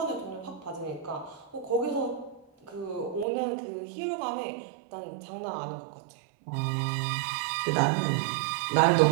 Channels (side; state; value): left; drops out; at 3.2 s